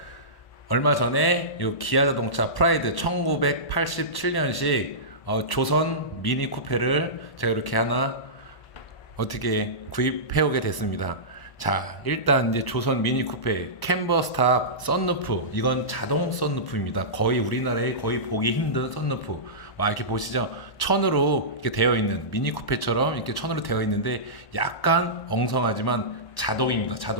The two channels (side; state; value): right; late; 1.0 ms